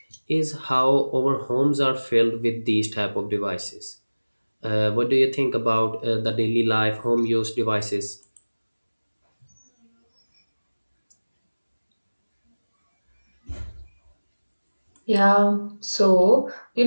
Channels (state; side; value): inverted; both; correlation -1.00